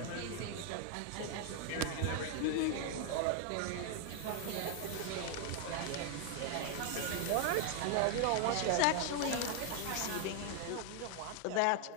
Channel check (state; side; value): different; both; correlation 0.00